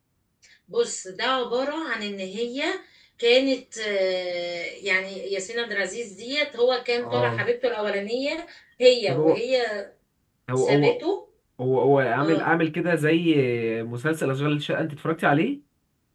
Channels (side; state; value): both; identical; correlation 1.00